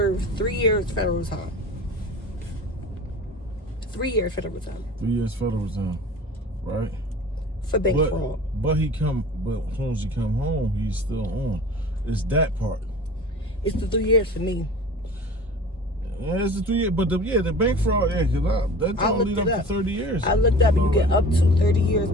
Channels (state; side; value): normal; both; correlation 0.40